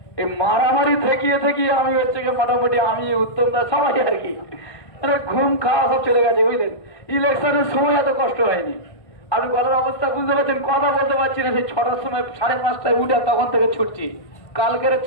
এই মারামারি থেকিয়ে আমি হচ্ছে মোটামুটি আমি উত্তমদা সবাই আর কি ঘুম খাওয়া সব চলে গেছে, বুঝলেন। ইলেকশনের সময় এত কষ্ট হয়নি। আপনি গলার অবস্থা বুঝতে পারছেন, কথা বলতে পারছি না। সেই 6টার সময়, 5:30টায় উঠে তখন থেকে ছুটছি, কালকের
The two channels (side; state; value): right; late; 1.6 ms